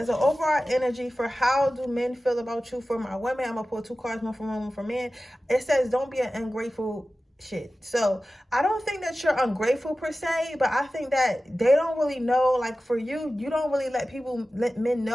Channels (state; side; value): normal; both; correlation 0.95